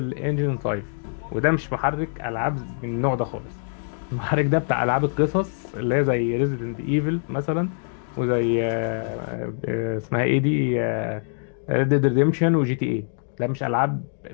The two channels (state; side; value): silent; right; digital silence